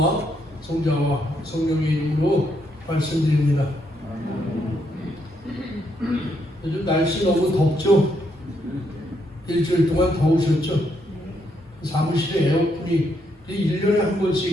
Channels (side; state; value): both; normal; correlation 0.76